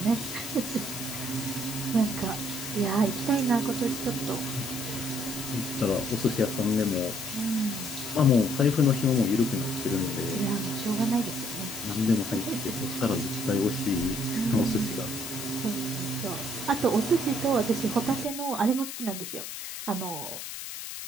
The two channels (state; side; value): noise; left; hiss, 8 dB below the sound